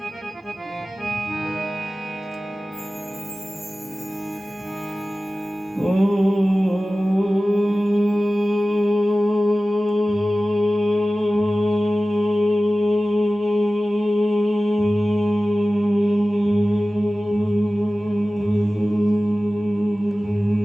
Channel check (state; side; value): normal; both; correlation 0.96